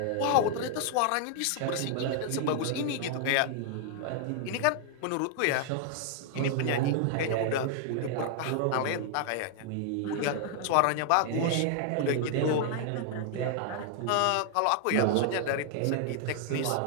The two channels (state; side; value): different; both; correlation 0.00